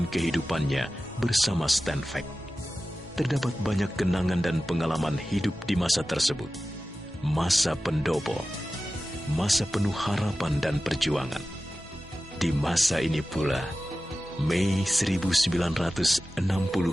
kehidupannya bersama Stanvac. Terdapat banyak kenangan dan pengalaman hidup di masa tersebut. Masa pendopo, masa penuh harapan dan perjuangan. Di masa ini pula, Mei 1964,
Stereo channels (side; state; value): both; normal; correlation 0.95